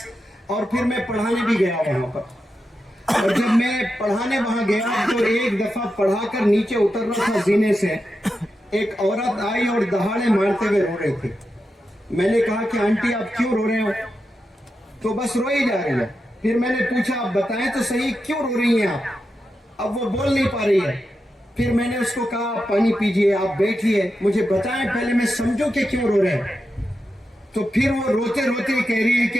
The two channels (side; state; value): both; normal; correlation 0.88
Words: और फिर मैं पढ़ाने भी गया वहाँ पर। और जब मैं पढ़ाने वहाँ गया तो एक दफ़ा पढ़ाकर नीचे उतर रहा था जीने से, ایک عورت آئی اور دہاڑے مارتے ہوئے رو رہی تھی. میں نے کہا کہ آنٹی آپ کیوں رو رہے ہو؟ تو بس روئی جا رہی ہے. پھر میں نے پوچھا آپ بتائیں تو صحیح کیوں رو رہی ہیں آپ؟ اب وہ بول نہیں پا رہی ہے. پھر میں نے اس کو کہا آپ پانی پیجئے، آپ بیٹھیے، مجھے بتائیں پہلے میں سمجھوں کہ کیوں رو رہے ہیں. تو پھر وہ روتے روتے کہہ رہی ہے کہ